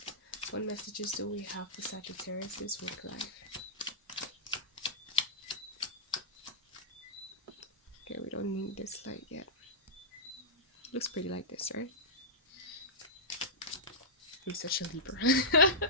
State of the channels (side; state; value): both; normal; correlation -0.13